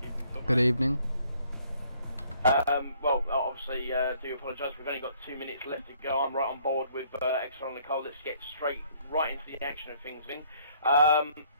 Good evening. Well, obviously, do apologise. We've only got 2 minutes left to go. I'm right on board with Xrl Nicole. Let's get right into the action of things, then.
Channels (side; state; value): both; inverted; correlation -0.63